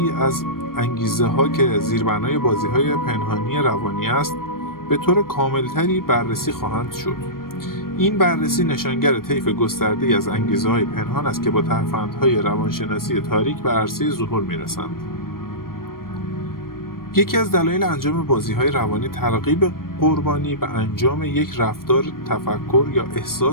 از انگیزه‌ها که زیربنای بازی‌های پنهانی روانی است، به طور کاملتری بررسی خواهند شد. این بررسی نشانگر طیف گسترده‌ای از انگیزه‌های پنهان است که با ترفندهای روانشناسی تاریک به عرصه ظهور می‌رسند. یکی از دلایل انجام بازی‌های روانی ترغیب قربانی به انجام یک رفتار، تفکر یا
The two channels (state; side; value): late; right; 0.92 ms